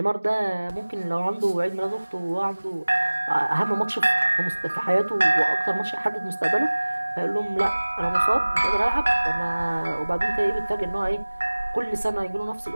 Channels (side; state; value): both; inverted; correlation -1.00